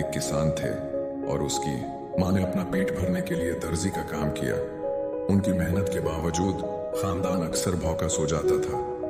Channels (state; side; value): identical; both; correlation 1.00